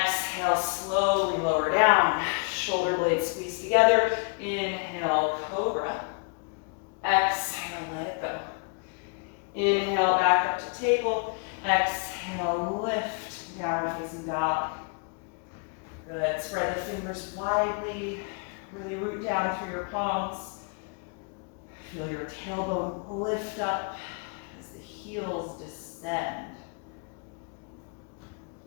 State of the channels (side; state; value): right; quieter; 39.8 dB